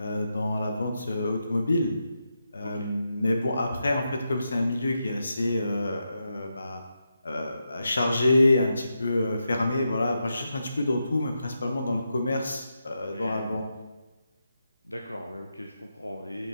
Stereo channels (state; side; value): inverted; both; correlation -0.86